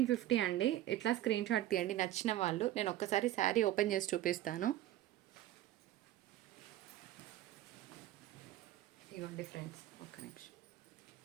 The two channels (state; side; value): quieter; left; 13.8 dB